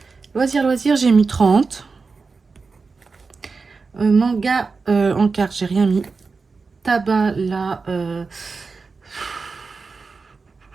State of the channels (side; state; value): left; quieter; 4.4 dB